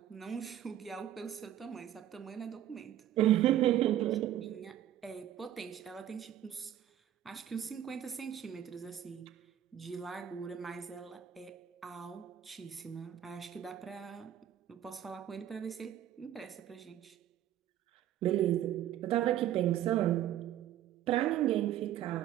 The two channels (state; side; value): quieter; left; 11.6 dB